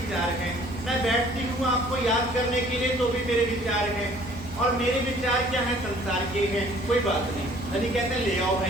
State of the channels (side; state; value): right; noise; hum, 17 dB below the sound